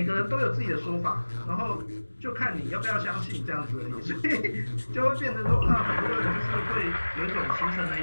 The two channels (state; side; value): inverted; both; correlation -1.00